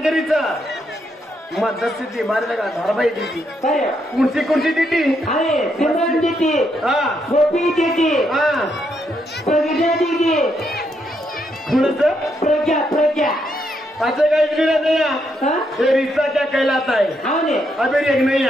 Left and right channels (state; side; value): normal; both; correlation 0.78